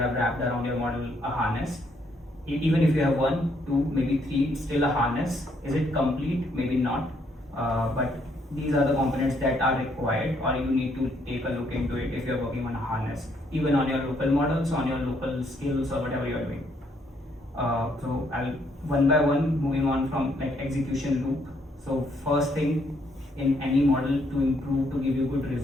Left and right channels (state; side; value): normal; both; correlation 0.71